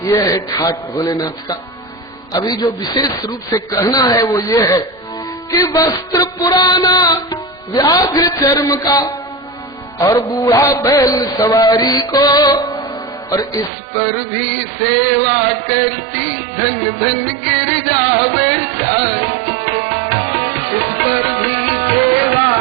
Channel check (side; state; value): left; drops out; at 13.7 s